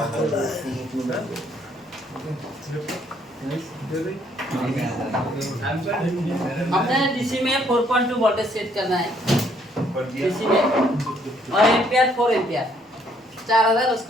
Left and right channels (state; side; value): normal; both; correlation 0.67